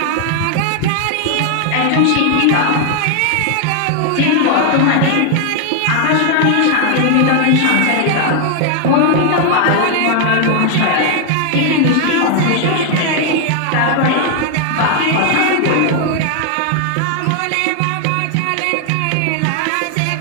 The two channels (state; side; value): different; both; correlation 0.00